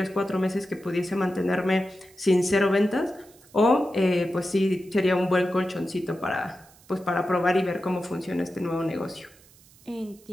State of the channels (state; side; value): noise; right; hiss, 27 dB below the sound